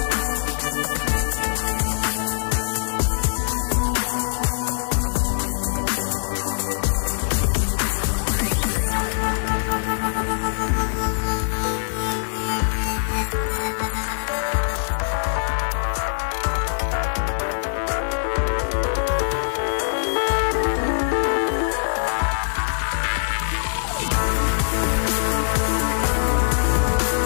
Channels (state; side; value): silent; right; digital silence